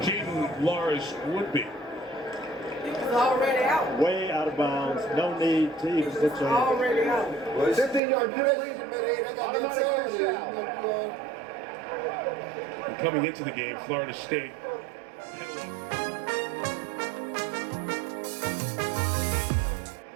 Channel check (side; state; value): left; drops out; at 8.0 s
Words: Jaden Lars would be. He was already out. Way out of bounds. No need to even put your hand. Already out. Well, it's 15-yard penalty. I got that Coming into the game, Florida State